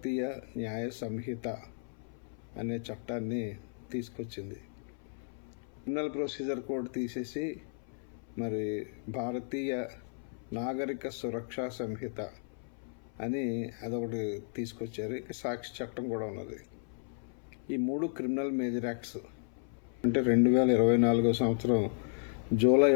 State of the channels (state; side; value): silent; right; 55 dB below the other